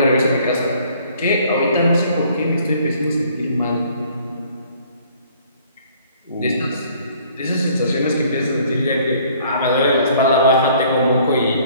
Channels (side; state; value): both; inverted; correlation -0.58